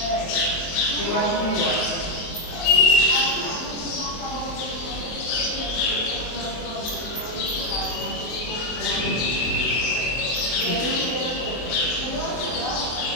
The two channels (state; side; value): late; right; 24 ms